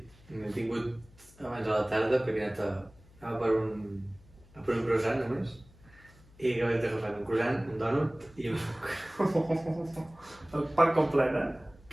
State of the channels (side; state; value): left; noise; hum, 25 dB below the sound